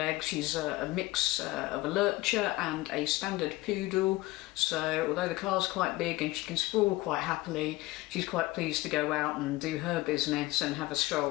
She's a mix of a lurcher and a standard poodle. So although the car's quite big and she can sprawl quite happily, she's quite pleased to go out and do her business and have a stroll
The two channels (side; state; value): right; quieter; 19.6 dB